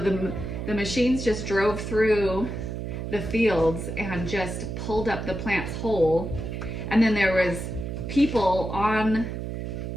machines just drove through the fields and just pulled up the plants whole. And then there was people on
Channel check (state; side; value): noise; right; hum, 5 dB below the sound